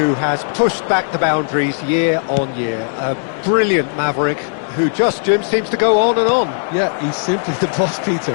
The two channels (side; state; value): right; silent; digital silence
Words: has pushed back the boundaries year on year. A brilliant maverick who just, Jim, seems to go on and on. Yeah, he's simply the boss, Peter.